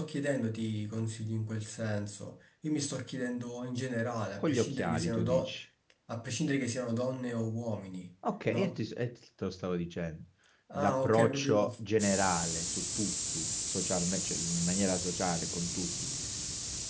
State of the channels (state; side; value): identical; both; correlation 1.00